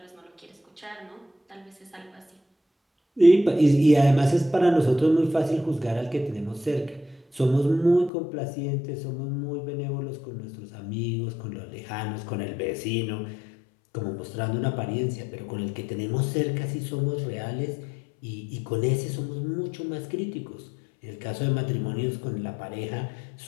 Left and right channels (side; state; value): right; drops out; at 8.1 s